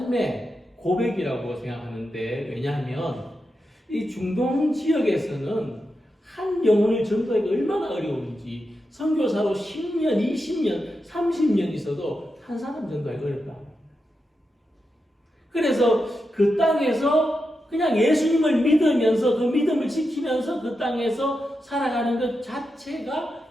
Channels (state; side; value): normal; both; correlation 0.88